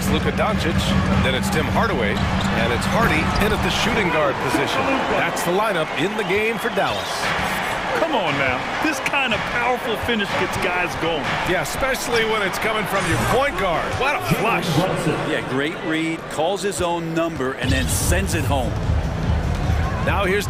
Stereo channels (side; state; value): both; identical; correlation 1.00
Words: Luka Doncic. Then it's Tim Hardaway. And it's Hardy in at the shooting guard position. That's the lineup in the game for Dallas. Come on now. This kind of powerful finish gets guys going. Yeah, especially when it's coming from your point guard. What a flush. Yeah, great read, calls his own number, and then sends it home. Now here's